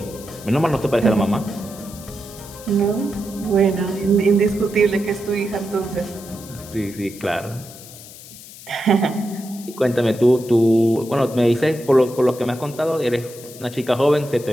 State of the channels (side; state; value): left; noise; hiss, 17 dB below the sound